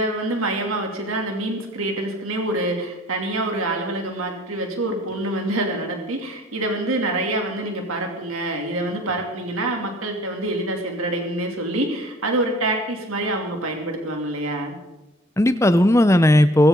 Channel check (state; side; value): normal; both; correlation 0.52